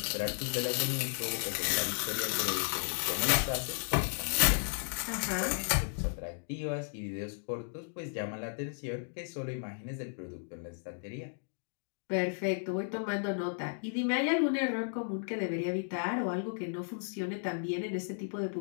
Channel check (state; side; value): silent; right; digital silence